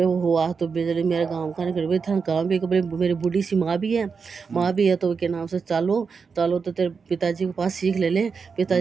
वो हुआ तो बिजली मेरे गाँव का नहीं कर था गाँव भी मेरी बूढ़ी सी माँ भी है तो के नाम से चालो चालो तो तेरे पिताजी के पास सीख ले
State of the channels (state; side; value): quieter; left; 5.4 dB